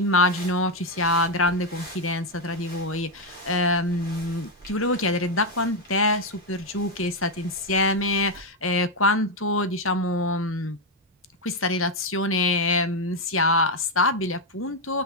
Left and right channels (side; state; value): both; normal; correlation 0.04